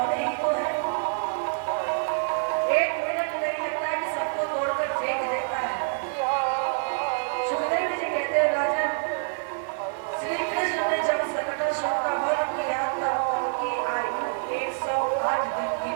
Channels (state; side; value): silent; left; digital silence